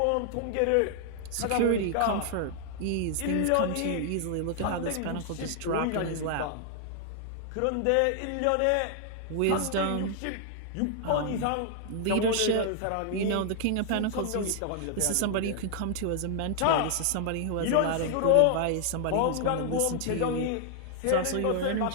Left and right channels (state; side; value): different; both; correlation 0.00